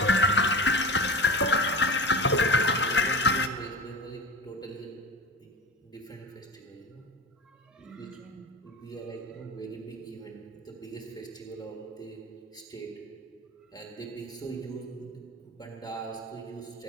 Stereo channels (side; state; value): both; normal; correlation 0.30